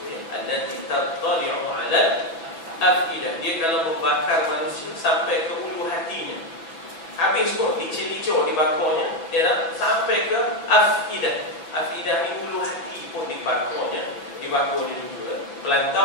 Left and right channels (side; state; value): right; late; 6.0 ms